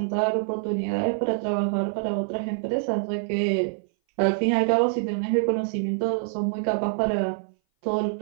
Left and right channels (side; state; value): left; silent; 58 dB below the other